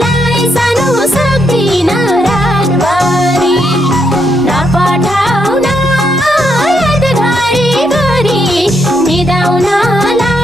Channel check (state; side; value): normal; both; correlation 0.78